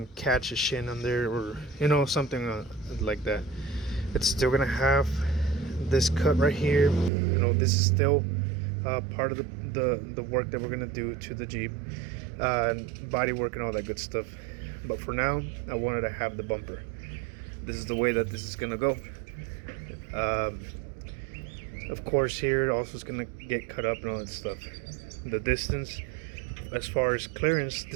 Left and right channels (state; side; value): drops out; left; at 7.1 s